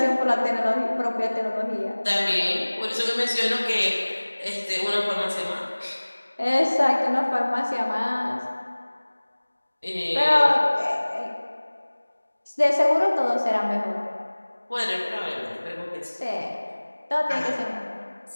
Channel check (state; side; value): inverted; both; correlation -1.00